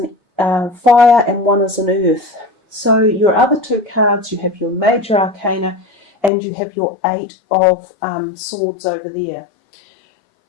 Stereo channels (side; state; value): right; drops out; at 6.3 s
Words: fire, and one is an earth. So your other 2 cards, you have your major arcana, and you have your 8 of swords over there.